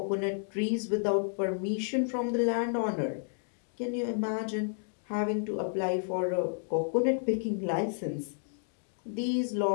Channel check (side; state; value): right; silent; digital silence